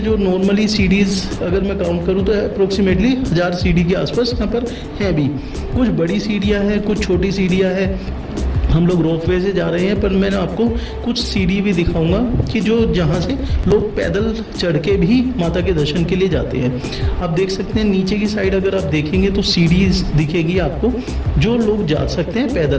जो नॉर्मली सीढ़ीज़ अगर मैं काउंट करूँ तो अप्रोक्सीमेटली 1000 सीढ़ी के आसपास यहाँ पर हैं भी। कुछ बड़ी सीढ़ियाँ हैं, कुछ छोटी सीढ़ियाँ हैं। हम लोग रोपवे से जा रहे हैं, पर मैंने आपको कुछ सीढ़ी भी दिखाऊंगा कि जो जहाँ से लोग पैदल चढ़ के भी माता के दर्शन के लिए जाते हैं। आप देख सकते हैं नीचे की साइड अगर आप देखेंगे तो सीढ़ी दिखेगी आपको, जो लोग जा सकते हैं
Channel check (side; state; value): both; identical; correlation 1.00